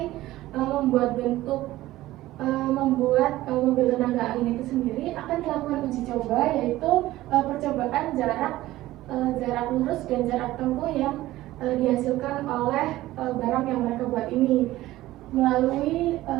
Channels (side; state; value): left; quieter; 16.3 dB